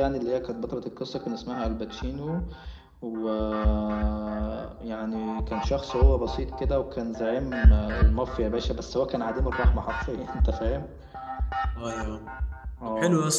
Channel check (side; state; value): both; identical; correlation 1.00